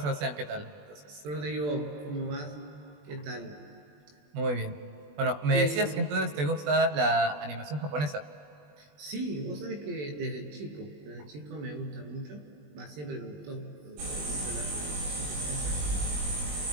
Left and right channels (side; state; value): left; late; 20 ms